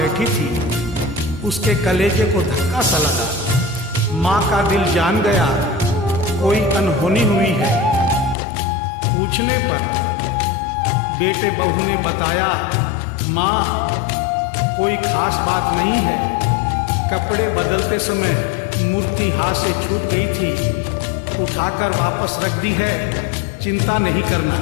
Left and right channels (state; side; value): drops out; right; at 8.3 s